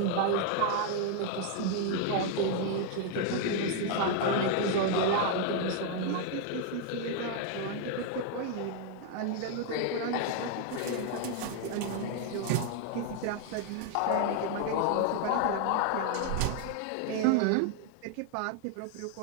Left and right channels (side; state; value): both; different; correlation 0.00